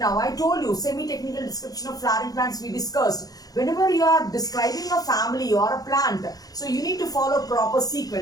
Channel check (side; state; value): right; late; 0.18 ms